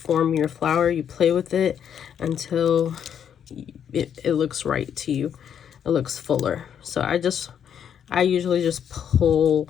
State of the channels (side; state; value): right; quieter; 8.6 dB